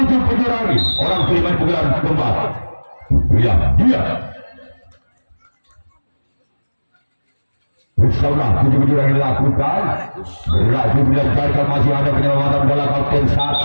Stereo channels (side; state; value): both; inverted; correlation -1.00